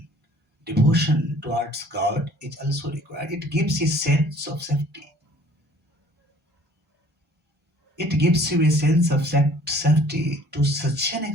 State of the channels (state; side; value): normal; both; correlation 0.53